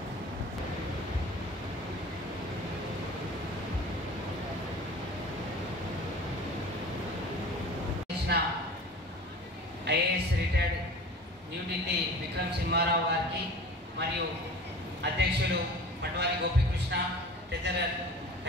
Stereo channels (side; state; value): both; normal; correlation 0.40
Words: IAS retired New Delhi Vikram Simharao గారికి మరియు అధ్యక్షులు పట్వారి గోపీకృష్ణ, ట్రెజరర్